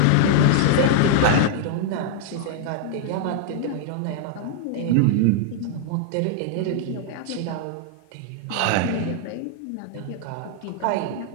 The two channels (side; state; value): both; different; correlation 0.00